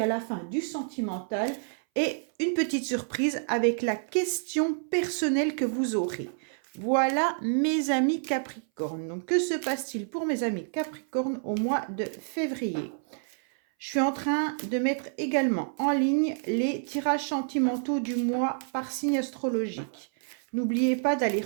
à la fin, du sentimental et une petite surprise avec la question personnelle que vous aurez. Voilà, mes amis Capricorne. Donc, que se passe-t-il pour mes amis Capricorne au mois de février ? Je suis en train de mettre également en ligne les tirages sentimentaux du mois par signe astrologique. N'oubliez pas d'aller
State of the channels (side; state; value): left; silent; 59 dB below the other